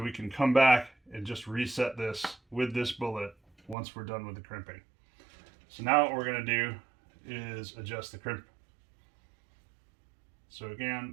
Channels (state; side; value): drops out; left; at 3.8 s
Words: we can come back and just reset this with this bullet once we're done with the crimping. So now what we're going to do is adjust the crimp. So